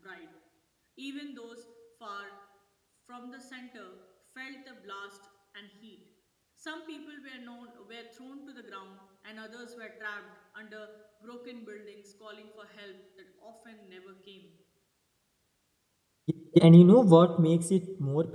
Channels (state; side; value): identical; both; correlation 1.00